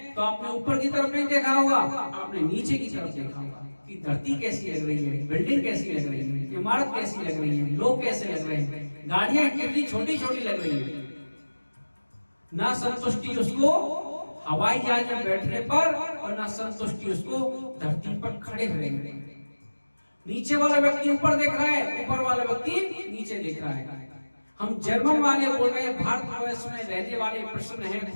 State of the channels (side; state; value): both; inverted; correlation -1.00